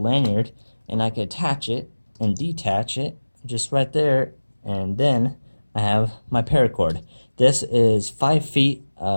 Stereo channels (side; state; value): both; inverted; correlation -1.00